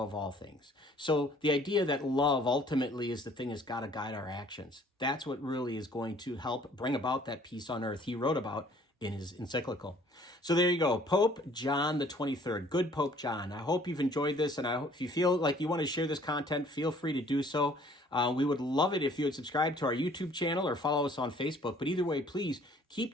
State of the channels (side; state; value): both; normal; correlation 0.57